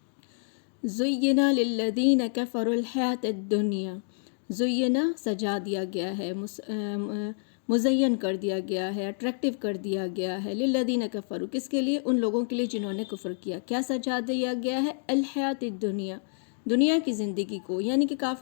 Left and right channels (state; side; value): silent; right; digital silence